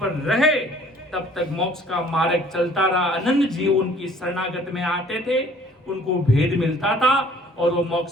रहे तब तक मोक्ष का मार्ग चलता रहा। अनंत जीव उनकी शरणागत में आते थे उनको भेद मिलता था और वो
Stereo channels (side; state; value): both; normal; correlation 0.55